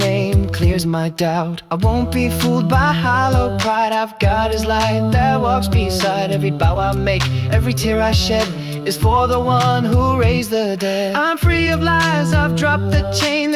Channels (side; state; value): both; identical; correlation 1.00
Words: clears my doubt. I won't be fooled by hollow pride. I've got his light that walks beside every bow I make. Every tear I shed is for the one who raised the dead. I'm free of lies, I've dropped the chain.